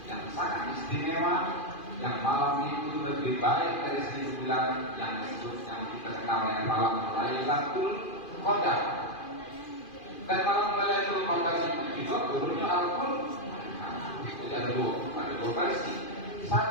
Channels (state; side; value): late; right; 2.5 ms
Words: yang sangat istimewa, yang malam itu lebih baik dari 1000 bulan, yang disebut yang kita kenal dengan malam Lailatul Qadar. Dan malam Lailatul Qadar itu juga turunnya Al-Quran. Jadi ada dua versi.